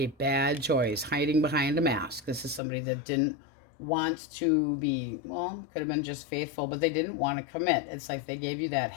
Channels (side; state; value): right; drops out; at 2.6 s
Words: bad choice, hiding behind a mask. This is somebody that didn't want to be, well, could have been just faithful, but they didn't want to commit. It's like they gave you that